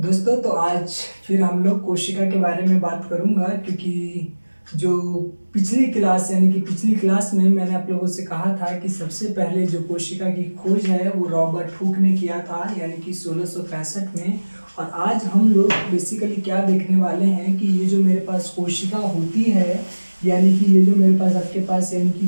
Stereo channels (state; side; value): inverted; both; correlation -1.00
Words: तो आज फिर हम लोग कोशिका के बारे में बात करूंगा क्योंकि जो पिछली क्लास में मैंने आप लोगों से कहा था कि सबसे पहले जो कोशिका की खोज है वो रॉबर्ट हुक ने किया था, यानी कि 1665 में। और आज हम लोग बेसिकली क्या देखने वाले हैं कि ये जो मेरे पास कोशिका होती है, यानी कि ये जो मेरे पास आपके पास यानी